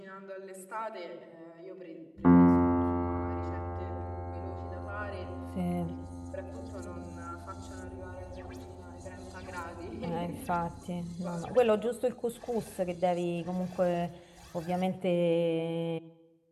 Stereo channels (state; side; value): identical; both; correlation 1.00